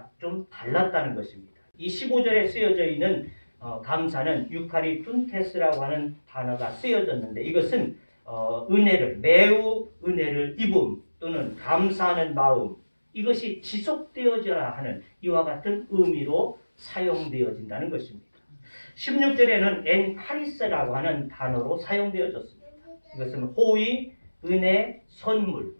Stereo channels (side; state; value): both; inverted; correlation -1.00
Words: 좀 달랐다는 것입니다. 이 15절에 쓰여져 있는 감사는 유카리툰테스라고 하는 단어가 쓰여졌는데 이것은 매우 은혜를 입음 또는 감사하는 마음 이것이 지속되어져야 하는 이와 같은 의미로 사용되어진다는 것입니다. 16절에는 엔카리스라고 하는 단어로 사용되어졌습니다. 이것은 호의, 은혜, 선물